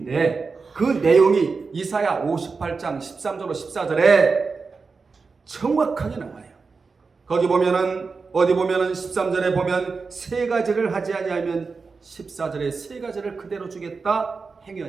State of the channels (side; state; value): left; quieter; 4.6 dB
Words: 그 내용이 이사야 58장 13절로 14절에 정확하게 나와요. 거기 보면은, 어디 보면은 13절에 보면 세 가지를 하지 아니하면 14절에 세 가지를 그대로 주겠다,